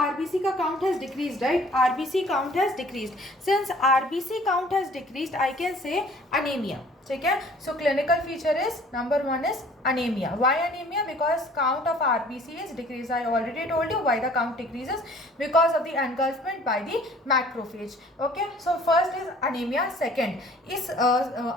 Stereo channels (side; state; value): both; normal; correlation 0.53